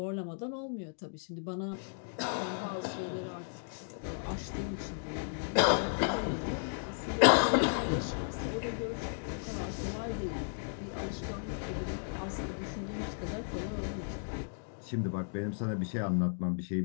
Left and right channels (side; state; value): right; silent; digital silence